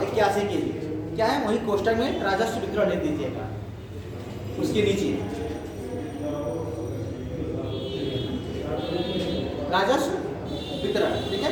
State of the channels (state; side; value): identical; both; correlation 1.00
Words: के लिए क्या है, वही कोष्टक में राजस्व वितरण लिख दीजिएगा, उसके नीचे राजस्व वितरण, ठीक है।